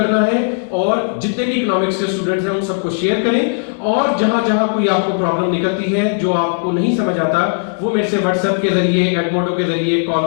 है, और जितने भी इकोनॉमिक्स के स्टूडेंट्स हैं उन सबको शेयर करें। और जहां जहां कोई आपको प्रॉब्लम निकलती है जो आपको नहीं समझ आता, वो मेरे से व्हाट्सएप के जरिए, एडमोडो के जरिए, कॉल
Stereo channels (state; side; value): silent; right; digital silence